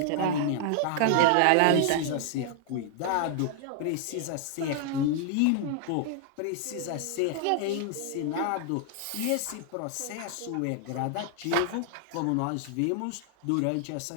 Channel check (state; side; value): different; both; correlation 0.00